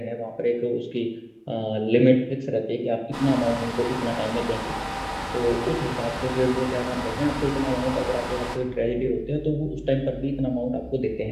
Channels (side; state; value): both; identical; correlation 1.00